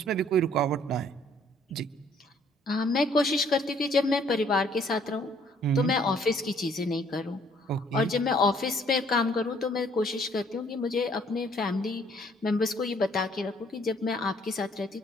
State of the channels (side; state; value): both; normal; correlation 0.62